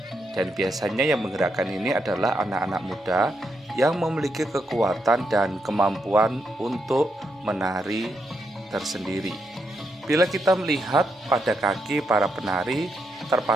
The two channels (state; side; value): normal; both; correlation 0.81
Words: Dan biasanya yang menggerakkan ini adalah anak-anak muda yang memiliki kekuatan dan kemampuan untuk menari tersendiri. Bila kita melihat pada kaki para penari